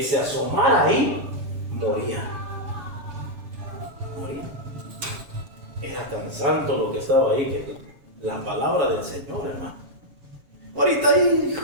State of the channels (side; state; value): left; late; 7.2 ms